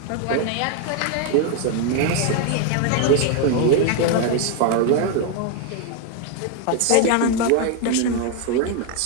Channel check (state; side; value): different; both; correlation 0.01